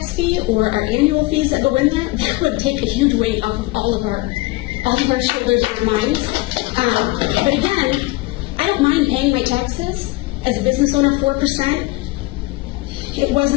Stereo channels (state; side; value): quieter; right; 21.5 dB